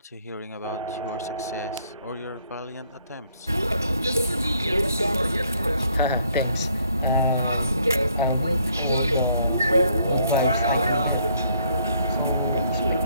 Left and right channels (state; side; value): inverted; both; correlation -0.67